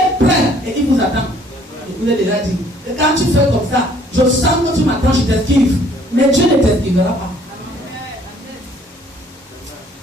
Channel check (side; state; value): both; normal; correlation 0.60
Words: prêt et il vous attend. Je vous ai déjà dit. Et quand tu fais comme ça, je sens que tu m'attends, je t'esquive. Mais Dieu ne t'esquivera pas.